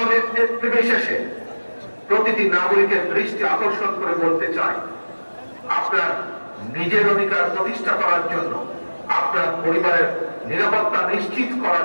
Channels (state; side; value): inverted; both; correlation -1.00